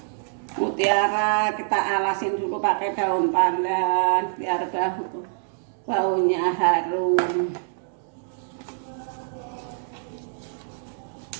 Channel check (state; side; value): silent; left; digital silence